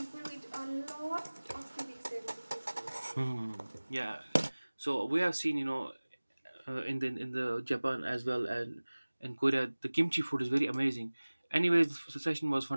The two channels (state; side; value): inverted; both; correlation -1.00